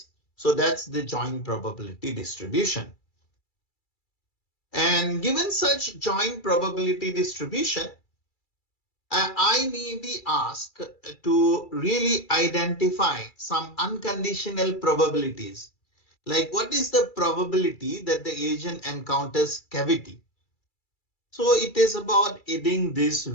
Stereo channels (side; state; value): right; late; 2.3 ms